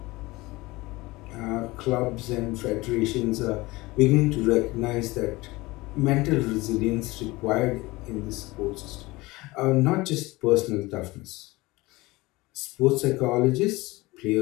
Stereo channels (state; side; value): quieter; right; 21.2 dB